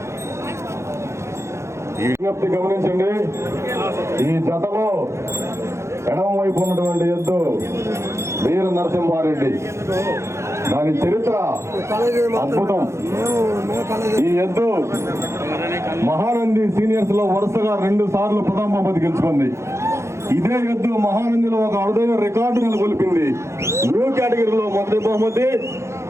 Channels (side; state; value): left; late; 0.13 ms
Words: ఈ విజ్ఞప్తి గమనించండి. ఈ జతలో ఎడమ వైపు ఉన్నటువంటి ఎద్దు వీర నరసింహారెడ్డి. దాని చరిత్ర అద్భుతం. ఈ ఎద్దు మహానంది సీనియర్స్ లో వరుసగా 2 సార్లు ప్రథమ బహుమతి గెలుచుకుంది. ఇదే ఎద్దు మహానందిలో ఒక అరుదైన రికార్డు నెలకొల్పింది. న్యూ కేటగిరీలో మొదటి బహుమతి,